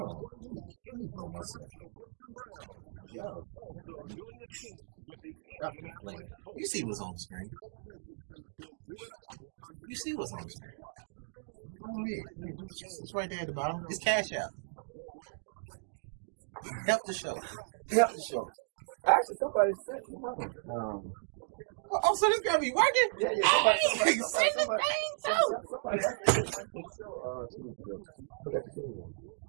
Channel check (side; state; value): left; silent; digital silence